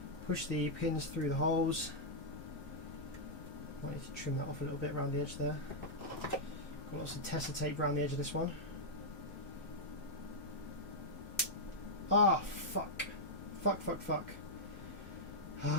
push the pins through the holes. Might need to trim that off a little bit around the edge there. Got lots of tester tape around the edge of this one. Ah, fuck. Fuck.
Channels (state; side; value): late; right; 1.1 ms